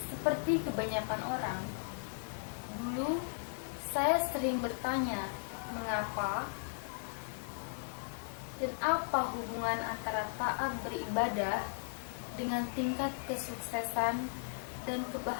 Seperti kebanyakan orang, dulu saya sering bertanya mengapa dan apa hubungan antara taat beribadah dengan tingkat kesuksesan dan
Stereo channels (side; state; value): right; silent; digital silence